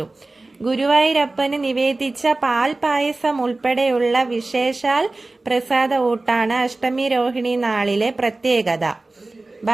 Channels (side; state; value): left; quieter; 3.1 dB